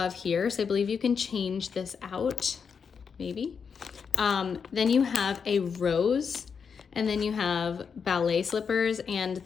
here. So I believe you can change this out, maybe. Then you have a rose, and then you have ballet slippers and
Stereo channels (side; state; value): right; quieter; 6.2 dB